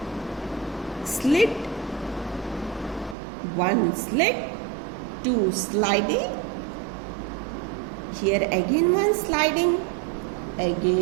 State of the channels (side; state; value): left; drops out; at 3.2 s